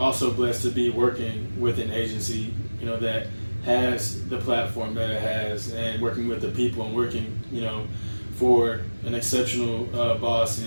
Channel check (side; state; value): both; inverted; correlation -1.00